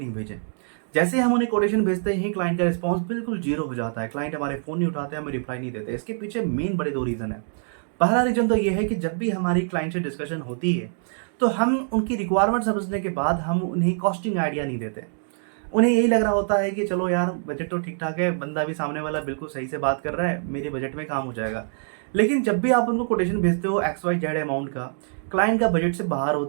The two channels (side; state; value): left; silent; 57 dB below the other